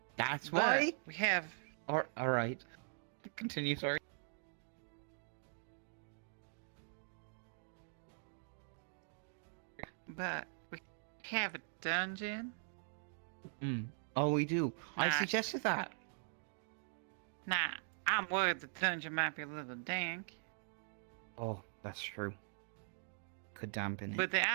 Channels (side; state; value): left; silent; digital silence